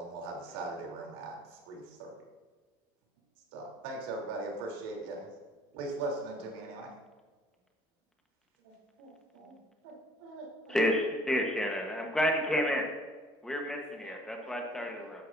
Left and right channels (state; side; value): normal; both; correlation 0.56